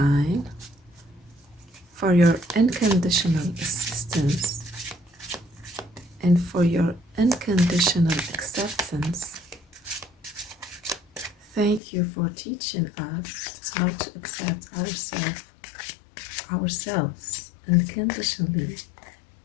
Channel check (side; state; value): right; drops out; at 11.8 s